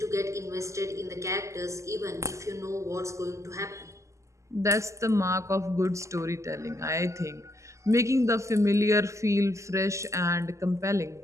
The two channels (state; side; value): late; left; 0.14 ms